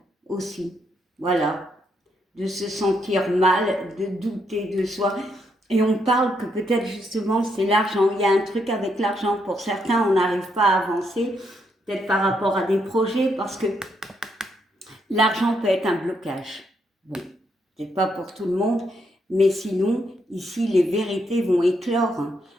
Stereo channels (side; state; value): both; normal; correlation 0.77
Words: aussi. Voilà. De se sentir mal, de douter de soi. Et on parle que peut-être justement c'est l'argent. Il y a un truc avec l'argent. Pour certains, on n'arrive pas à avancer, peut-être par rapport à des projets, parce que l'argent peut être un blocage. Bon, c'est pas pour tout le monde, mais sinon, ici, les vérités vont éclore.